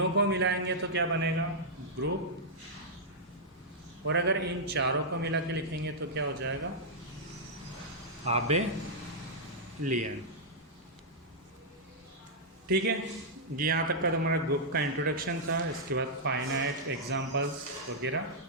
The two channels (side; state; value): both; normal; correlation -0.08